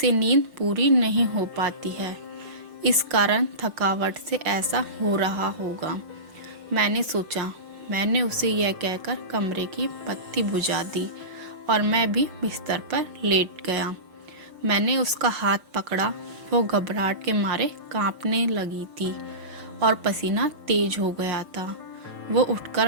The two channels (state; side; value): late; left; 6.6 ms